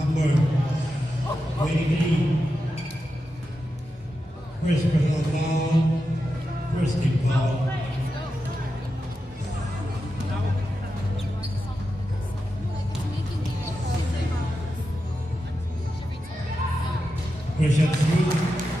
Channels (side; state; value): both; normal; correlation 0.89